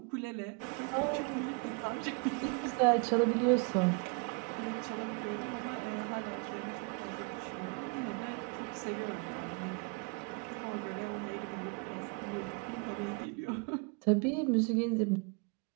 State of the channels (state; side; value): quieter; left; 32.6 dB